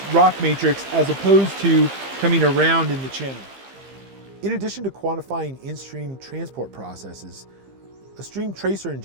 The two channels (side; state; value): left; late; 15 ms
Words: rock matrix as opposed to coming around in the channel. In addition to quantifying in-stream transport processes, a stream tracer